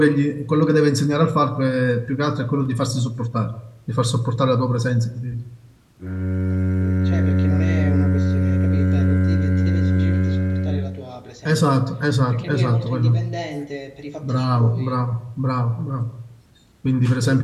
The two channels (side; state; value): both; identical; correlation 1.00